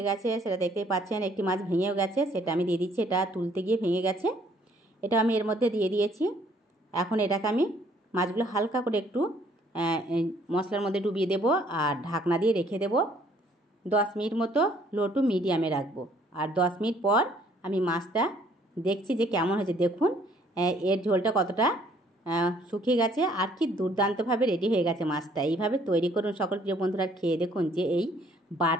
গেছে, সেটা দেখতেই পাচ্ছেন। একটি মাছ ভেঙেও গেছে, সেটা আমি দিয়ে দিচ্ছি। এটা তুলতে গিয়ে ভেঙে গেছে, এটা আমি এর মধ্যে দিয়ে দিয়েছি। এখন এটাকে আমি মাছগুলো হালকা করে একটু মশলার মধ্যে ডুবিয়ে দেব আর ঢাকনা দিয়ে রেখে দেব 10 মিনিট মতো, লো টু মিডিয়ামে রাখবো। আর 10 মিনিট পর আমি মাছটা দেখছি যে কেমন হয়েছে। দেখুন এর ঝোলটা কতটা শুকিয়ে গেছে আর কি দুর্দান্তভাবে রেডি হয়ে গেছে মাছটা। এইভাবে তৈরি করুন সকল প্রিয় বন্ধুরা, খেয়ে দেখুন যে এই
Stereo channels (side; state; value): both; normal; correlation 0.62